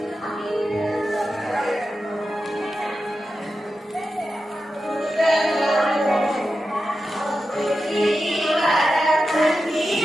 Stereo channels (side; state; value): both; normal; correlation 0.91